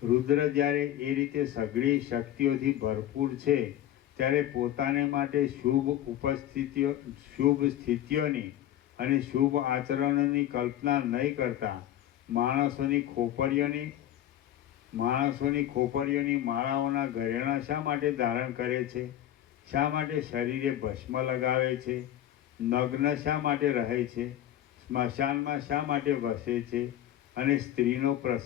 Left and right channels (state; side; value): quieter; right; 12.2 dB